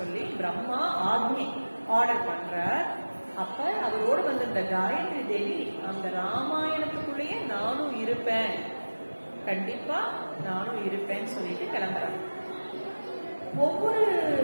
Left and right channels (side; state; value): both; inverted; correlation -1.00